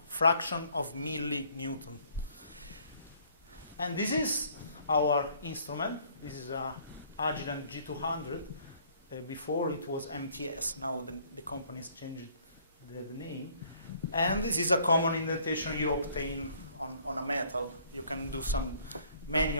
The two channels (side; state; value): both; inverted; correlation -0.60